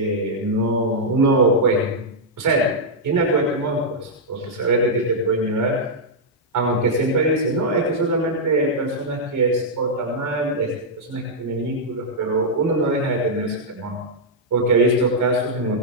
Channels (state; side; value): normal; both; correlation -0.07